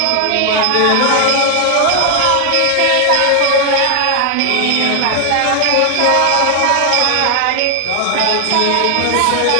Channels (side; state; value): both; different; correlation 0.00